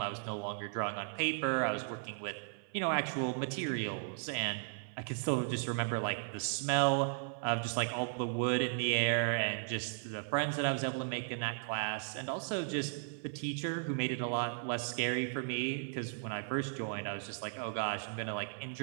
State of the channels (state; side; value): silent; left; 54 dB below the other